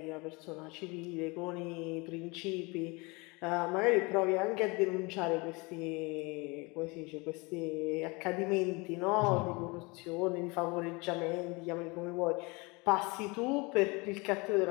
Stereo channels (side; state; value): right; quieter; 26.9 dB